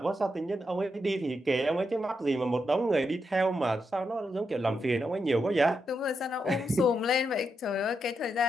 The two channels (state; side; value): normal; both; correlation 0.83